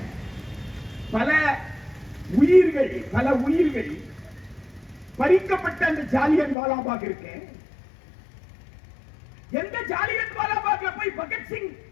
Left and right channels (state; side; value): drops out; right; at 6.6 s